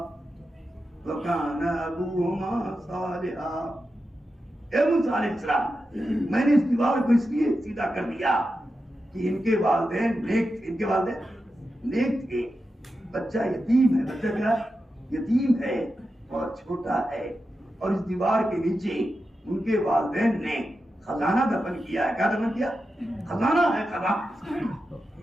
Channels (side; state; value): both; normal; correlation 0.90